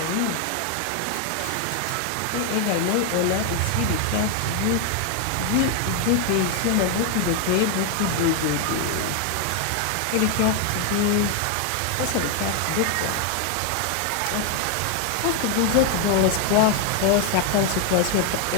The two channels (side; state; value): both; different; correlation 0.01